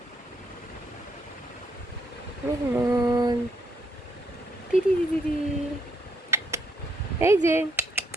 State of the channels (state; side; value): normal; both; correlation 0.74